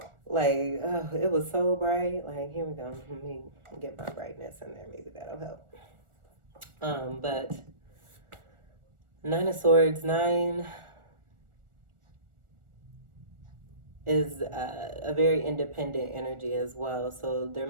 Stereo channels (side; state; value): left; late; 1.4 ms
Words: like, oh, it was so bright. Like, here we go. Let me get my brightness in there. Maybe that'll help. But Nine of Swords, 9 is a very independent energy as well. So there